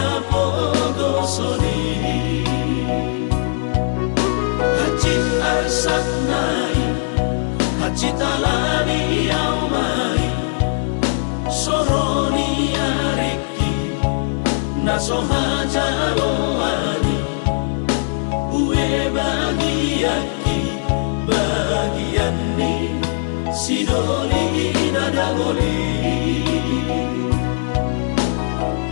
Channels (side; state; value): right; silent; digital silence